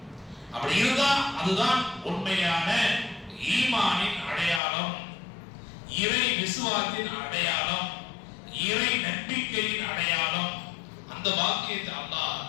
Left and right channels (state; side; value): drops out; right; at 4.6 s